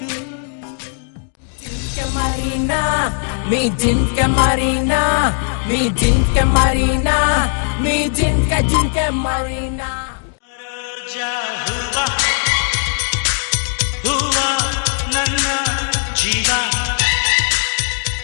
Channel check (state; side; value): silent; right; digital silence